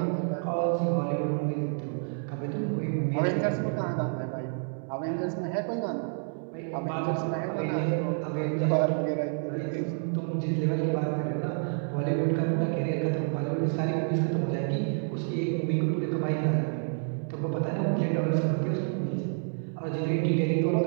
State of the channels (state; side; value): silent; left; 59 dB below the other